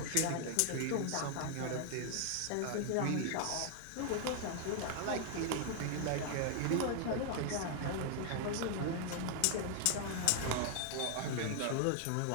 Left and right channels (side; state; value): both; different; correlation 0.00